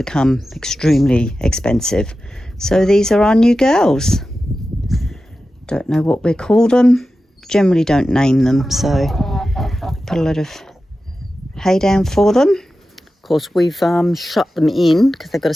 extremely expensive. So these are our new girls. Don't know what we call them, generally don't name them, so put a lot of hay down for them. Of course, we've shut them in because they've got to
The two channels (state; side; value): normal; both; correlation 0.93